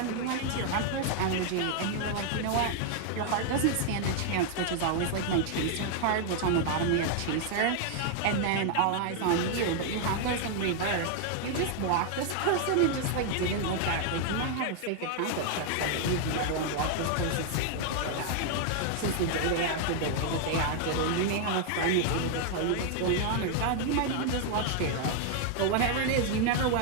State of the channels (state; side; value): different; both; correlation 0.00